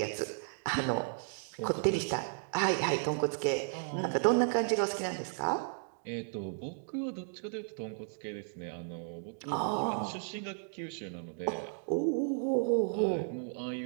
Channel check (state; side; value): silent; left; digital silence